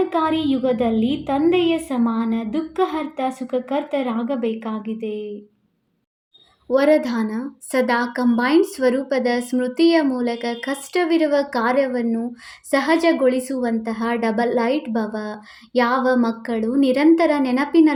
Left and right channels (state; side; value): identical; both; correlation 1.00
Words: ಯುಗದಲ್ಲಿ ತಂದೆಯ ಸಮಾನ ದುಃಖಹರ್ತ ಸುಖಕರ್ತರಾಗಬೇಕಾಗಿದೆ. ವರದಾನ: ಸದಾ ಕಂಬೈನ್ಡ್ ಸ್ವರೂಪದ ಸ್ಮೃತಿಯ ಮೂಲಕ ಕಷ್ಟವಿರುವ ಕಾರ್ಯವನ್ನು ಸಹಜಗೊಳಿಸುವಂತಹ ಡಬಲ್ ಲೈಟ್ ಭವ. ಯಾವ ಮಕ್ಕಳು ನಿರಂತರ